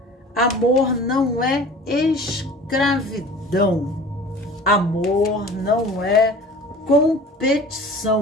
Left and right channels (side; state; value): both; normal; correlation 0.43